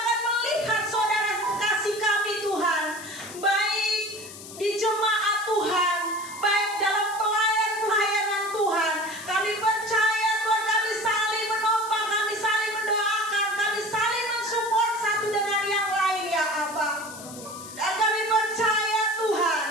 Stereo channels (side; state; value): left; noise; hiss, 14 dB below the sound